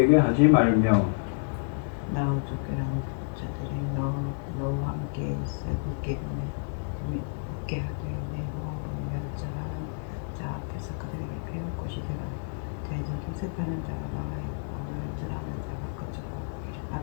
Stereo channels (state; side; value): silent; right; 55 dB below the other